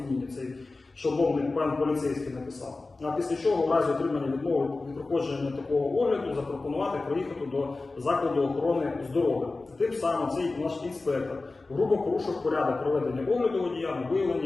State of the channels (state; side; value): quieter; right; 3.5 dB